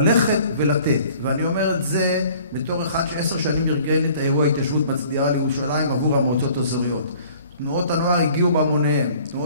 ולתת. ואני אומר את זה בתור אחד ש10 שנים ארגן את האירוע ההתיישבות מצדיעה לירושלים עבור המועצות האזוריות. תנועות הנוער הגיעו בהמוניהם.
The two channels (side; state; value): both; inverted; correlation -0.53